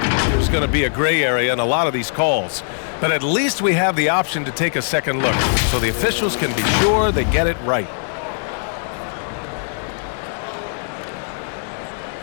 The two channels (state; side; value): silent; right; 66 dB below the other